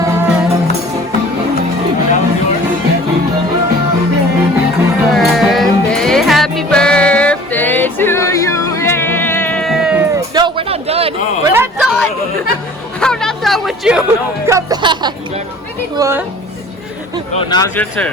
Birthday, happy birthday to you. Yay! No, we're not done. Oh. We're not done. I'm not done with you. Come back. What? Oh, now it's your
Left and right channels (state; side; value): normal; both; correlation 0.47